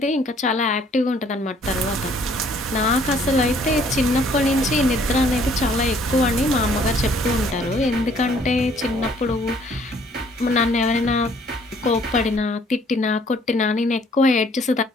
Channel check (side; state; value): both; normal; correlation 0.61